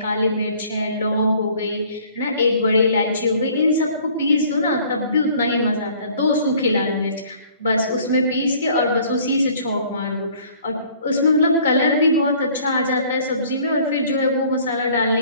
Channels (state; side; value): inverted; both; correlation -0.55